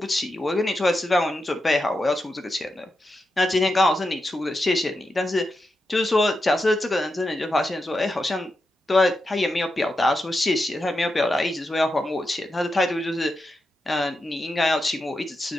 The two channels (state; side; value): normal; both; correlation 0.88